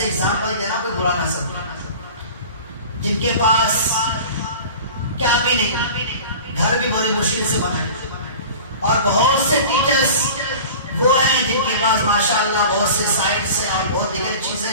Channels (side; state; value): both; inverted; correlation -0.39